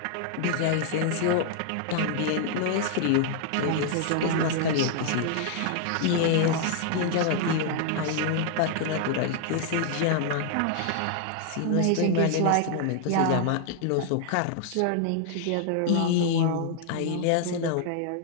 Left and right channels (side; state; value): both; different; correlation 0.00